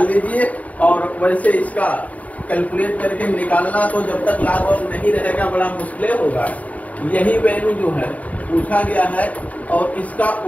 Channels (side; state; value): right; late; 0.071 ms